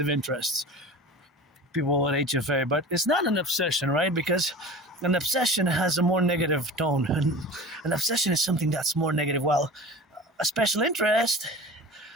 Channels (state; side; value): normal; both; correlation 0.36